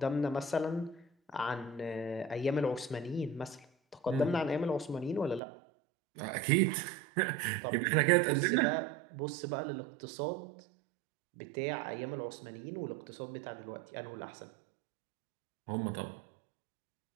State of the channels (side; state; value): left; drops out; at 5.4 s